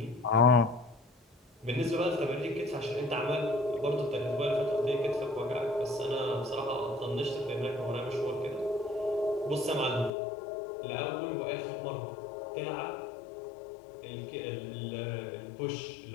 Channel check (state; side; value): drops out; right; at 10.1 s